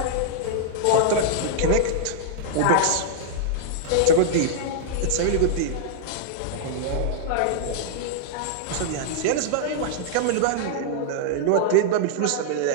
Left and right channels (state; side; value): different; both; correlation -0.01